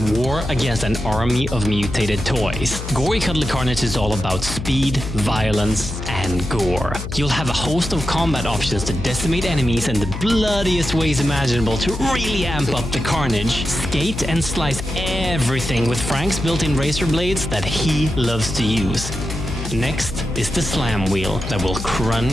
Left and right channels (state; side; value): noise; left; hum, 7 dB below the sound